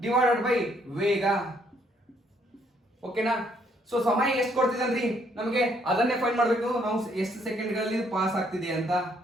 ಡಿವೈಡೆಡ್ ಬೈ ವೇಗ. ಓಕೆನಾ? ಸೊ ಸಮಯ ಎಷ್ಟು ಕೊಡ್ತಿದ್ರಿ ನಮಗೆ ಅದನ್ನೇ ಫೈಂಡ್ ಮಾಡಬೇಕು ನಾವು, ಎಷ್ಟು ಸೆಕೆಂಡ್ಗಳಲ್ಲಿ ಪಾಸ್ ಆಗ್ತಿದೆ ಅಂತ.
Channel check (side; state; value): both; normal; correlation 0.69